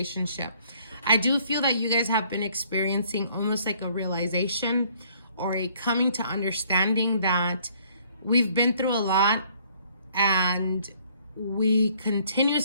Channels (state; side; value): inverted; both; correlation -0.62